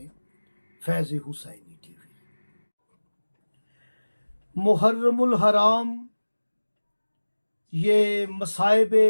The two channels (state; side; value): inverted; both; correlation -1.00